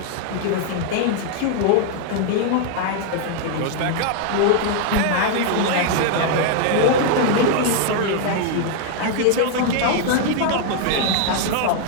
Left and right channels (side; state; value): both; different; correlation 0.00